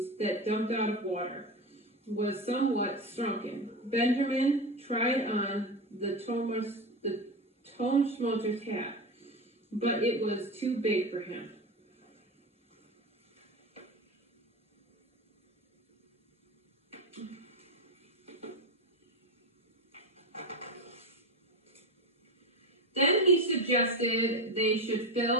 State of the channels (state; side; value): normal; both; correlation 0.20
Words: that dumped out of water, was somewhat shrunken. Benjamin tried on the Tonschmotter's hat, but it was too big for him. Then he suggested they should